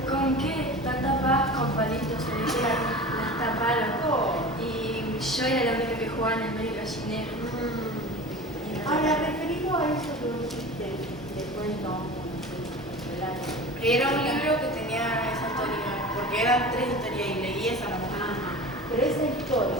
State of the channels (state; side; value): normal; both; correlation 0.35